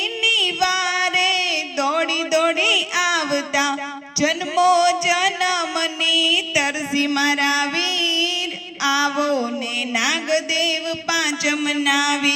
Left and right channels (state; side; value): identical; both; correlation 1.00